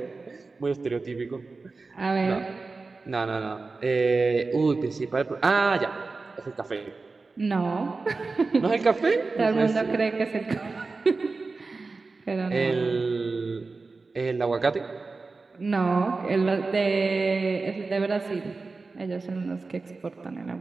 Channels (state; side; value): quieter; left; 3.9 dB